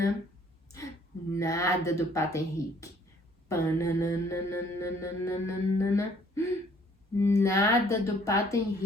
Nada do Pato Henrique. Pananana. Nada do Pato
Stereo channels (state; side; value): normal; both; correlation 0.60